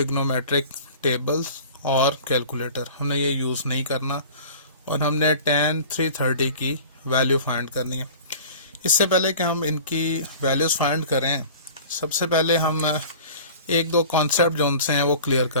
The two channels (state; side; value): inverted; both; correlation -0.42